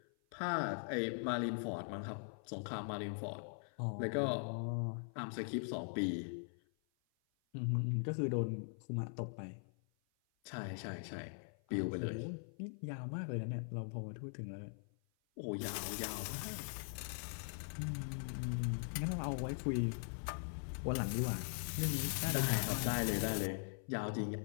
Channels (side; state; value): right; silent; 50 dB below the other